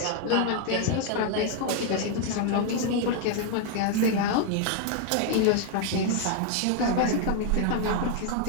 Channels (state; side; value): different; both; correlation 0.00